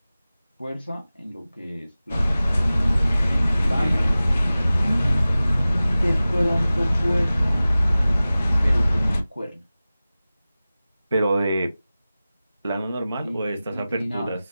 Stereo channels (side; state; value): both; inverted; correlation -0.97